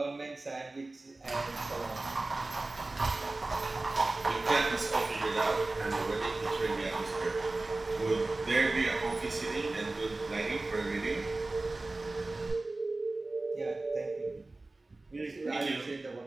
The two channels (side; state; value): left; quieter; 3.1 dB